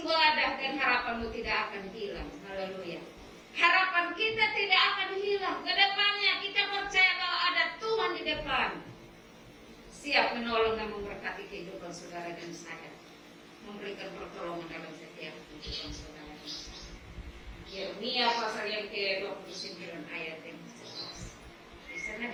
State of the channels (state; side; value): identical; both; correlation 1.00